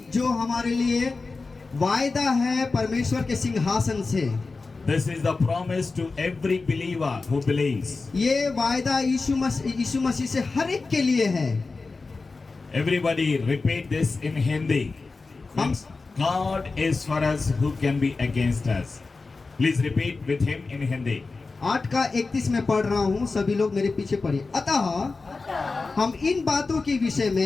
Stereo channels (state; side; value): quieter; right; 4.0 dB